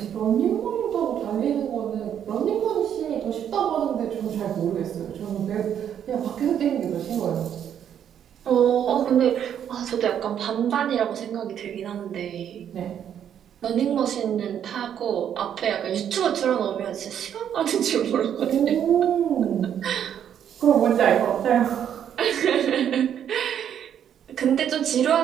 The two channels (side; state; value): left; quieter; 9.3 dB